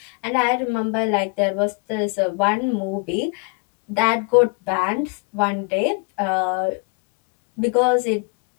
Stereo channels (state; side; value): quieter; right; 33.5 dB